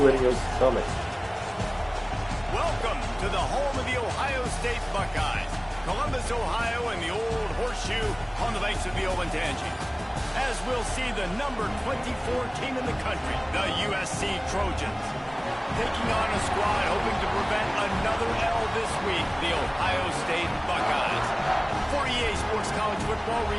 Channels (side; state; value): both; identical; correlation 1.00